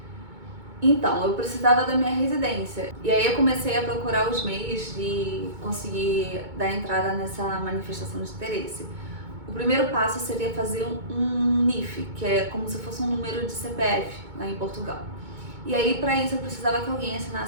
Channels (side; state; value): left; late; 2.2 ms